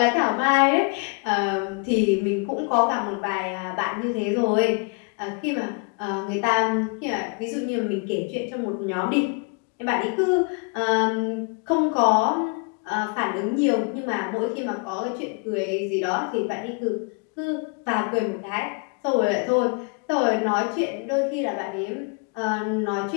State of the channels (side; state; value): right; quieter; 35.2 dB